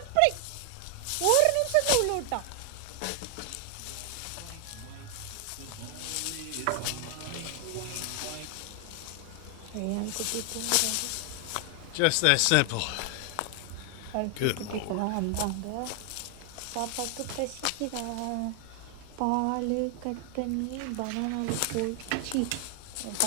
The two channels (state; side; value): different; both; correlation 0.00